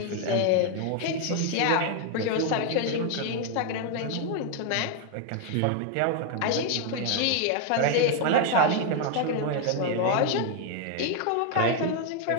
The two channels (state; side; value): different; both; correlation 0.01